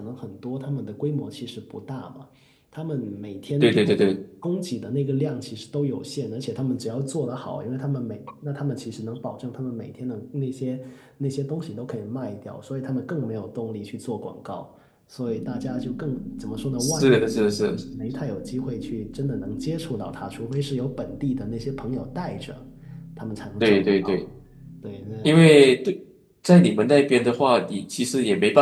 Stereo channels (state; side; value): identical; both; correlation 1.00